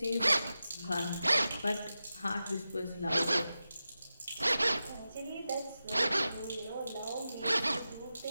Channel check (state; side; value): inverted; both; correlation -0.92